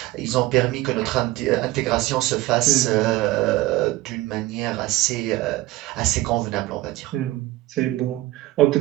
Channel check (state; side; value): quieter; left; 17.8 dB